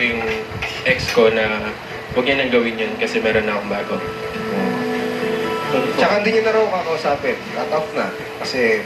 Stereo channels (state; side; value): identical; both; correlation 1.00